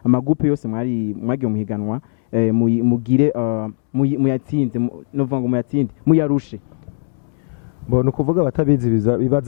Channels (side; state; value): right; silent; 67 dB below the other